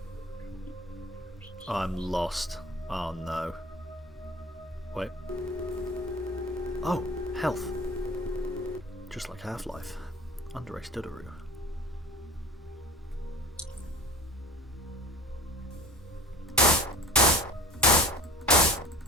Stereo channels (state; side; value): normal; both; correlation 0.41